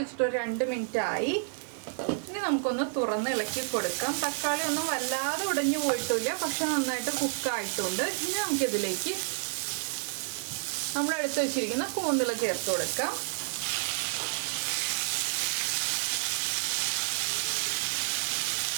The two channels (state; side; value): silent; left; digital silence